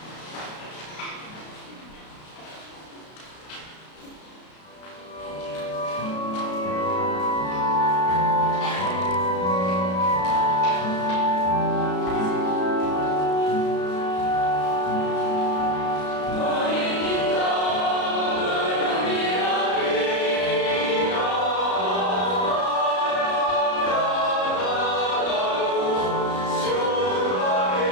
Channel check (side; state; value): right; late; 33 ms